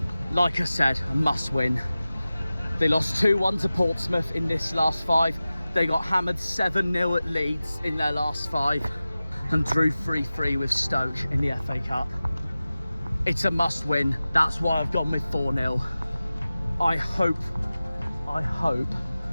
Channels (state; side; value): inverted; both; correlation -0.96